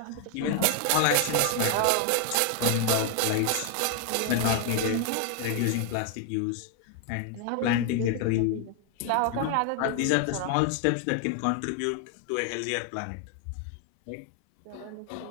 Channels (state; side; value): different; both; correlation 0.00